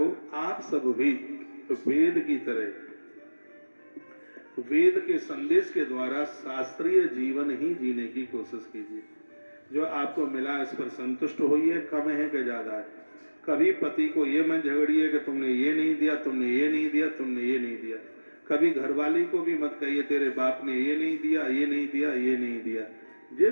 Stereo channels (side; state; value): both; inverted; correlation -1.00